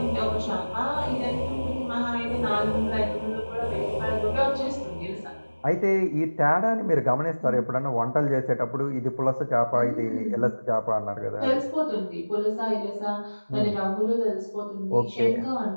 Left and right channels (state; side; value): inverted; both; correlation -1.00